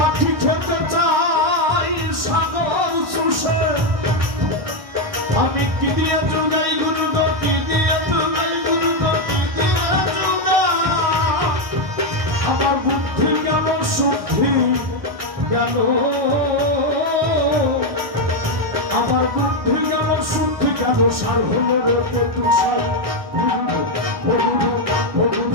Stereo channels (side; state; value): left; late; 1.6 ms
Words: খেতে চাই সাগর চুষে আমি কি দিয়ে চুগাই গুরু কি দিয়ে চুগাই গুরু কি দিয়ে চুগাই আমার বুদ্ধি গেল শুদ্ধি গেল আমার বুদ্ধি গেল শুদ্ধি গেল সার হলো রে তুষার